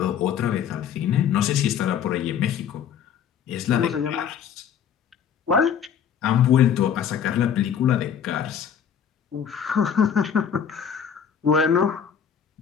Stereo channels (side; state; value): right; quieter; 8.1 dB